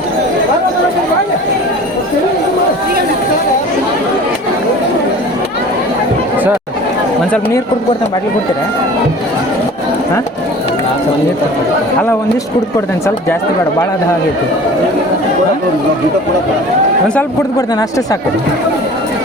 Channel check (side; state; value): both; normal; correlation 0.43